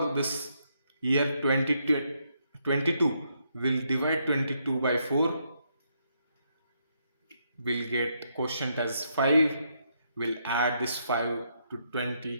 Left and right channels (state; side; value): inverted; both; correlation -0.77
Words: this year 2022 will divide 22 by 4. We'll get quotient as 5. We'll add this 5 to